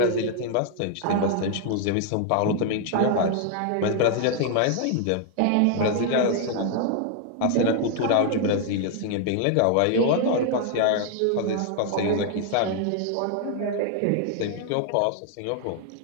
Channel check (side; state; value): both; different; correlation 0.00